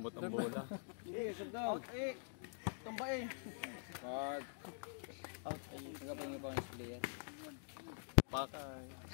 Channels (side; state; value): right; silent; digital silence